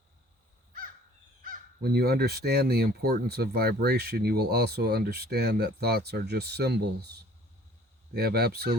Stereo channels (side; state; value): both; normal; correlation 0.53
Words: When you understand the importance of vibration, you will also understand that thoughts are just symbols. They have